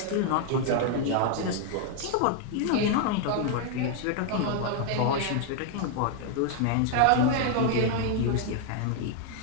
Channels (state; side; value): different; both; correlation 0.00